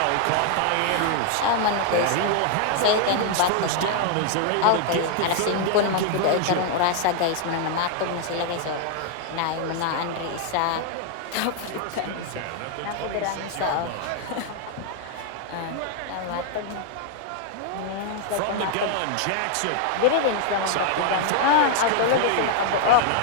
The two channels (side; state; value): both; different; correlation 0.00